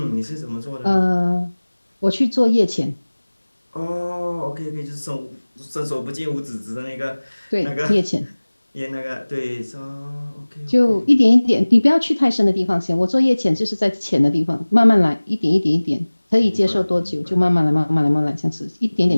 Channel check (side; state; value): both; inverted; correlation -1.00